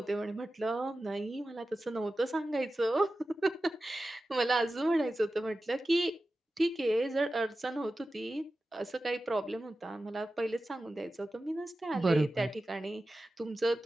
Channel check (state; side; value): normal; both; correlation 0.94